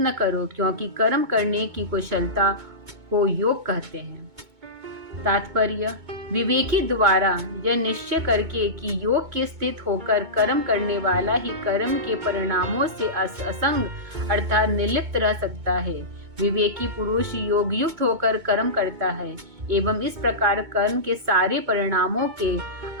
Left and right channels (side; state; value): left; late; 2.2 ms